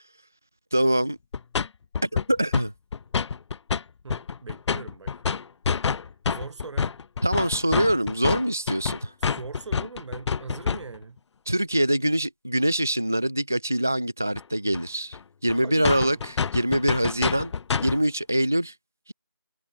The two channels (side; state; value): both; inverted; correlation -0.84